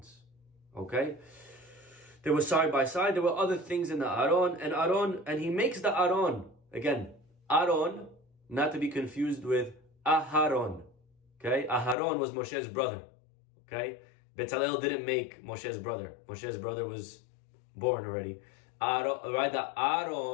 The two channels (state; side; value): drops out; right; at 12.0 s